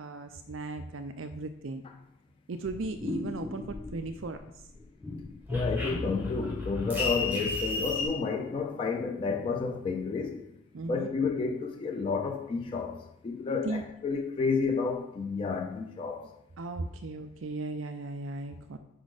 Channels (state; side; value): quieter; right; 3.2 dB